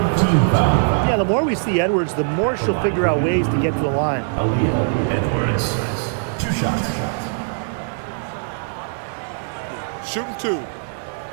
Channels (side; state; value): left; silent; digital silence